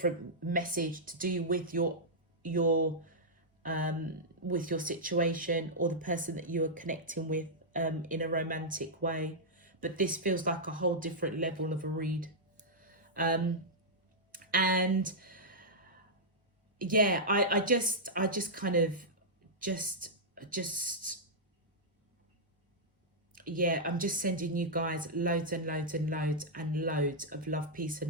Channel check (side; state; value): both; normal; correlation -0.09